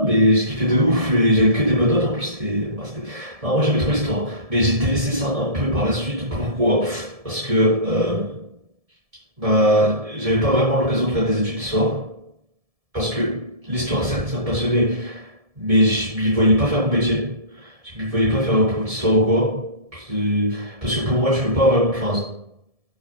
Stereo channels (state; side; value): late; left; 1.7 ms